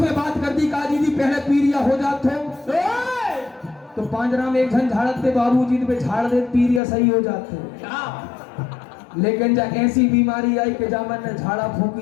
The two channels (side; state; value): right; drops out; at 6.8 s